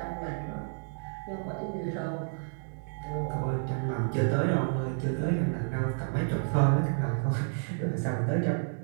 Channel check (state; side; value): silent; left; digital silence